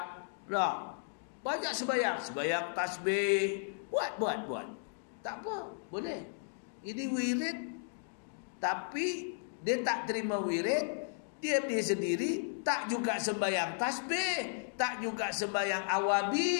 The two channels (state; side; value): silent; right; digital silence